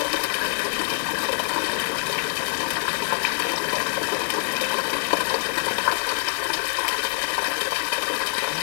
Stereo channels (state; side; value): silent; right; digital silence